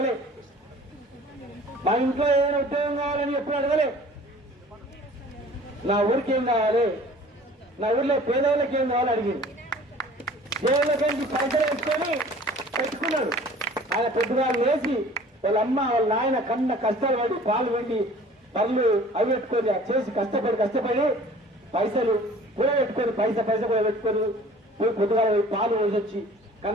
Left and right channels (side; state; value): both; normal; correlation 0.48